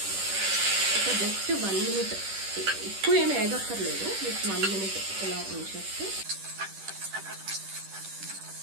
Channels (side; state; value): left; late; 10 ms